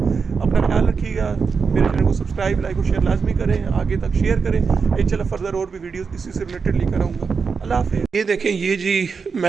अपना ख्याल रखिएगा, मेरे चैनल को सब्सक्राइब, लाइक और शेयर लाजमी करें, आगे तक शेयर करें। इंशाल्लाह फर्दर और भी वीडियोस इसी से रिलेटेड लेकर आऊँगा। अल्लाह हाफ़िज़। ये देखें, ये जी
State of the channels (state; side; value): quieter; left; 5.4 dB